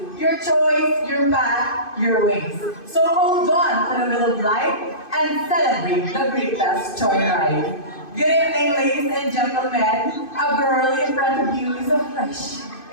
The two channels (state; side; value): late; right; 2.5 ms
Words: Your choice, your path, your ways. So hold on to the wheel of life and celebrate the greatest joyride. Good evening, ladies and gentlemen. A girl in front of you is a fresh